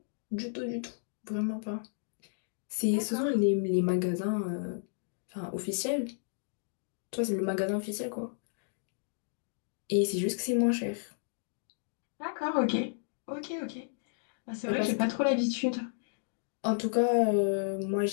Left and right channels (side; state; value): right; silent; digital silence